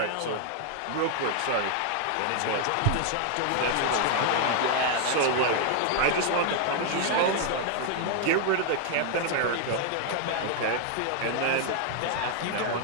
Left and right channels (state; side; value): different; both; correlation 0.00